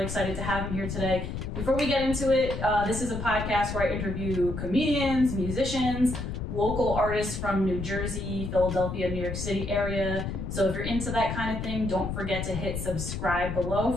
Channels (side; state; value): left; noise; rumble, 5 dB below the sound